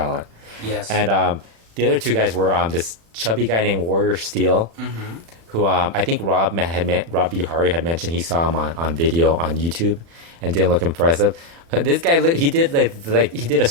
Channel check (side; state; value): left; late; 36 ms